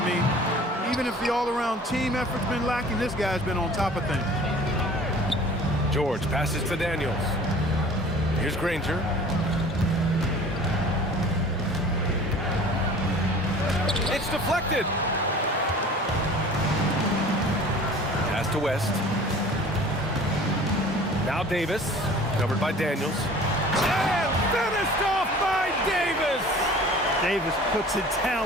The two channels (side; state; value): both; normal; correlation 0.45